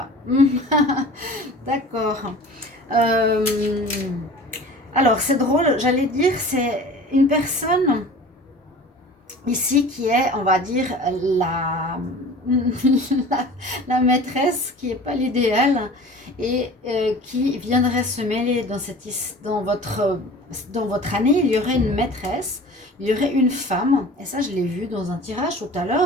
D'accord. Alors, c'est drôle, j'allais dire, c'est une personne ici qui est, on va dire, la maîtresse, qui n'est pas l'idéal, et qui viendrait se mêler dans votre année. Il y aurait une maîtresse, il y aurait une femme, et ça je l'ai vu dans un tirage tout à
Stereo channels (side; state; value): both; normal; correlation 0.41